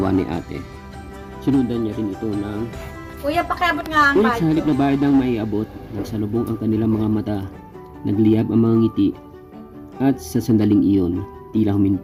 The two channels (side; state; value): both; identical; correlation 1.00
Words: ni ate. Sinundan niya rin ito ng Kuya, pakiabot nga ang ngunit sa halip na bayad ang maiabot, nagsalubong ang kanilang mga mata, nagliyab ang mga ngiti, at sa sandaling iyon, tila